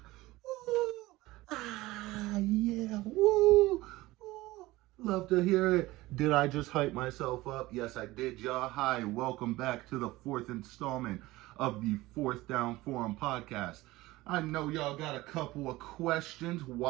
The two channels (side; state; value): left; quieter; 18.9 dB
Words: Yeah, woo, woo. Love to hear it. Did I just hype myself up? Yes, I did, y'all. Hi, welcome back to the fourth installment of the Fourth Down Forum podcast. I know y'all got a couple of questions.